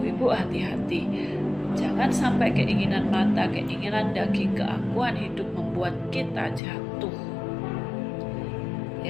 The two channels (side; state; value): right; drops out; at 6.6 s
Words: hati-hati, jangan sampai keinginan mata, keinginan daging, keakuan hidup membuat kita jatuh.